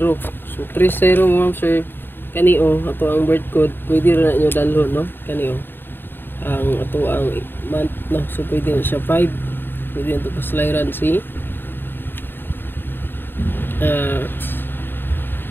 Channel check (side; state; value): right; late; 0.098 ms